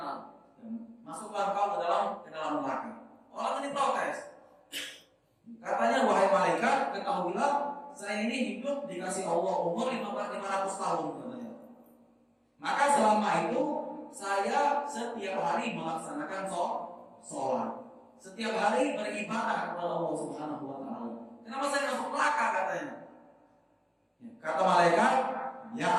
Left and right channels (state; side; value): identical; both; correlation 1.00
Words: masuklah kau ke dalam neraka. Orang ini protes. Katanya wahai malaikat, ketahuilah saya ini hidup dikasih Allah umur 500 tahun katanya. Maka selama itu saya setiap hari melaksanakan sholat, setiap hari beribadah kepada Allah Subhanahu Wa Taala. Kenapa saya masuk neraka katanya? Kata malaikat, ya